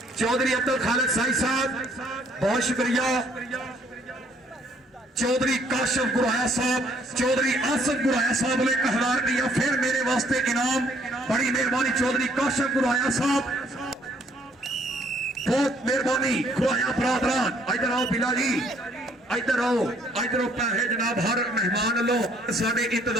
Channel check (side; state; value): both; normal; correlation 0.64